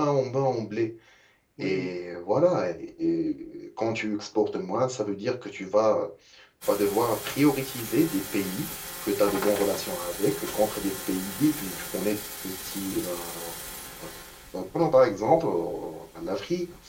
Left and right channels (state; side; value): identical; both; correlation 1.00